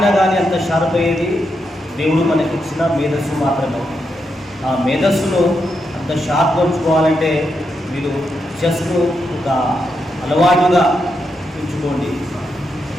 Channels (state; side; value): normal; both; correlation 0.83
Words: కానీ అంత షార్ప్ అయ్యేది దేవుడు మనకి ఇచ్చిన మేధస్సు మాత్రమే. ఆ మేధస్సును అంత షార్ప్ ఉంచుకోవాలంటే మీరు చెస్ను ఒక అలవాటుగా ఉంచుకోండి.